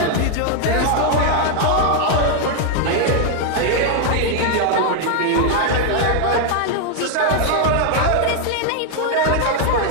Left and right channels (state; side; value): different; both; correlation 0.00